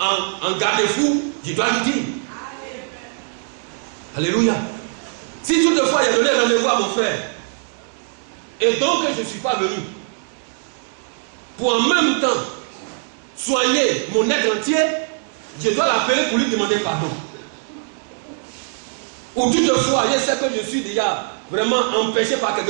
en garde-fou, je dois lui dire. Alléluia. Si toutefois il a donné rendez-vous à mon frère, et donc je ne suis pas venu, pour en même temps soigner mon être entier, je dois l'appeler pour lui demander pardon. Ou toutefois, je sais que je suis déjà vraiment empêché par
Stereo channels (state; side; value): silent; left; 61 dB below the other